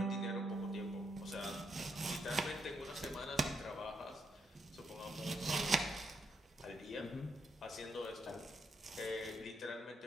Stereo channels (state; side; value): normal; both; correlation 0.78